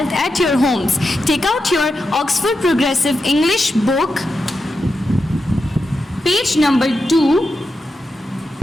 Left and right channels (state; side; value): normal; both; correlation 0.88